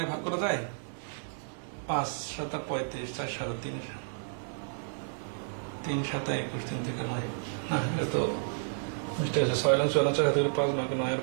ভাগ করা যায়, 5 7 35, 4 7 3 3 7 21, 3 থেকে 9, না এটা তো মিস্টেক আছে, 6 লং 4 4 থেকে 5 9 9 আর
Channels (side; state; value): left; silent; 57 dB below the other